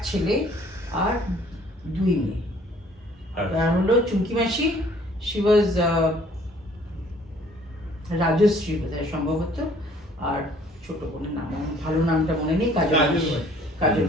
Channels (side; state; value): both; normal; correlation 0.57